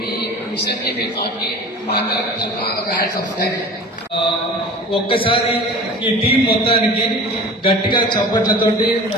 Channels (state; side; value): normal; both; correlation 0.39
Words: మిషన్కి మీ థాట్కి మా అందరం ఒక హ్యాట్స్ ఆఫ్. Thank you. ఒక్కసారి ఈ టీం మొత్తానికి గట్టిగా చప్పట్లతోటి